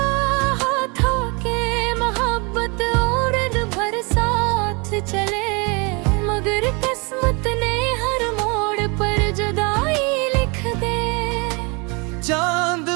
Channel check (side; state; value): left; quieter; 30.2 dB